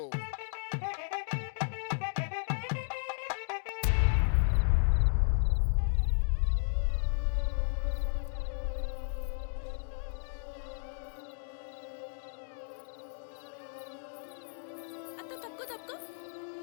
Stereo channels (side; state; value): right; silent; digital silence